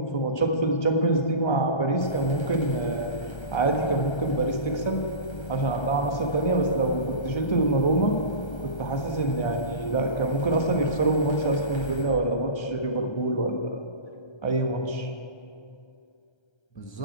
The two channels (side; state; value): right; late; 1.3 ms